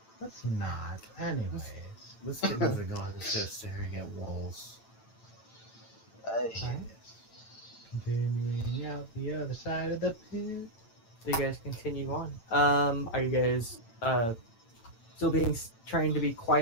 Let's not. Anyways. Let's get moving on instead of staring at walls. Continuing out the other side of the pit. So you guys continue on. Are you guys still trying to be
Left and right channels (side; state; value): right; late; 8.9 ms